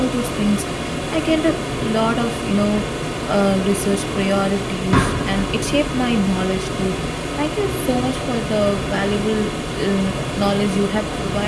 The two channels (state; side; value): identical; both; correlation 1.00